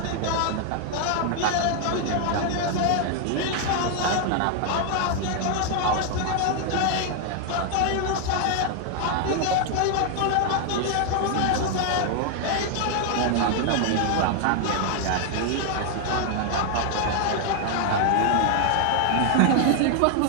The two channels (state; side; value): different; both; correlation 0.00